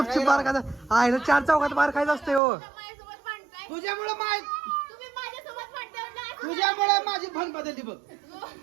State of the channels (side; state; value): left; drops out; at 2.4 s